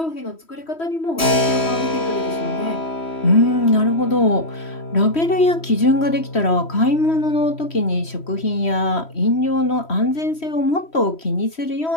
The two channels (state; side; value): late; right; 3.1 ms